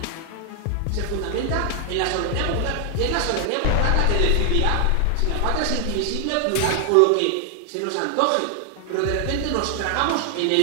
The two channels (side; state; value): both; different; correlation 0.00